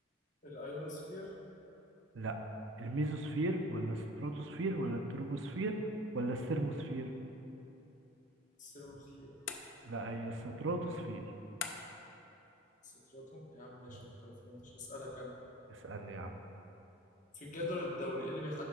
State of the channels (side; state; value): both; normal; correlation 0.43